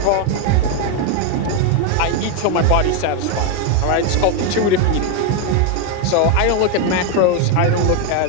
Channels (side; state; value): both; different; correlation 0.02